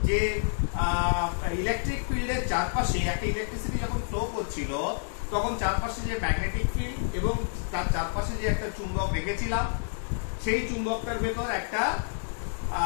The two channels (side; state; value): right; silent; digital silence